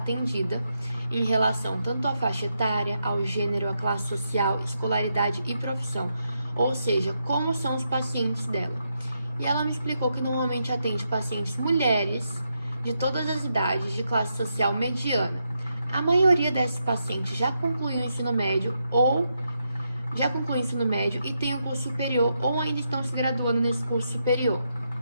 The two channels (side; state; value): both; inverted; correlation -0.82